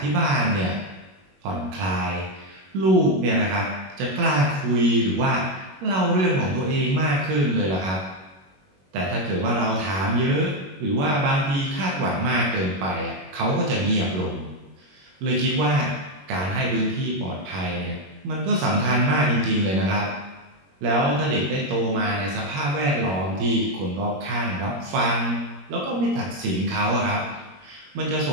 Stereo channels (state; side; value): late; left; 21 ms